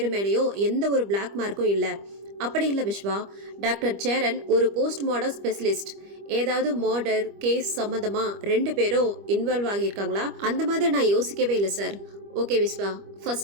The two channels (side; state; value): left; late; 25 ms